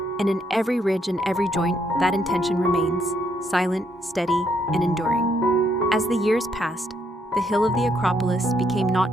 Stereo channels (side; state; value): both; normal; correlation 0.73